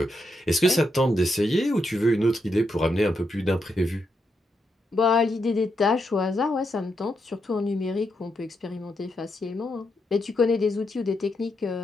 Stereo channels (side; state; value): both; normal; correlation 0.82